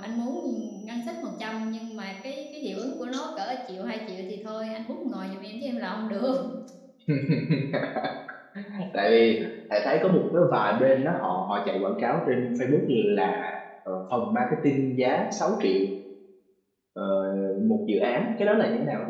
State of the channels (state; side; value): identical; both; correlation 1.00